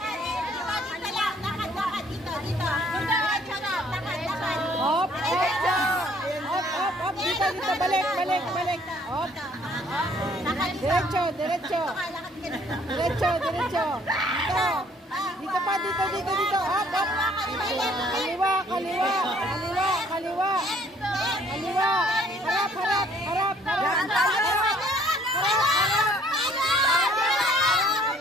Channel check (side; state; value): both; normal; correlation 0.60